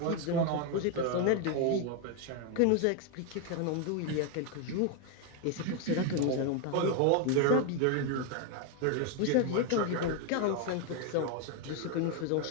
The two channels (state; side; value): different; both; correlation 0.01